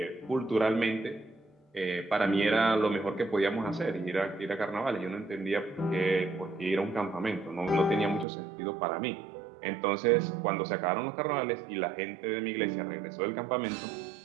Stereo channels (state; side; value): drops out; left; at 8.2 s